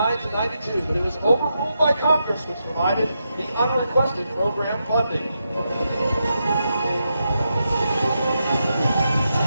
to '92, but it was overruled by Congress, which provided the unrequested program funding.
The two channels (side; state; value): both; inverted; correlation -0.85